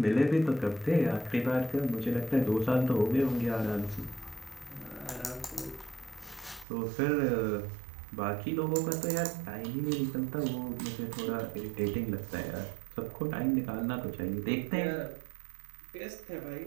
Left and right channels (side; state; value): left; drops out; at 6.7 s